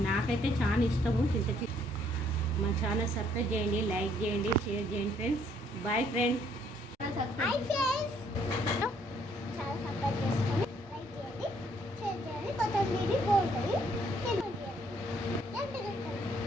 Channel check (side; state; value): both; normal; correlation 0.66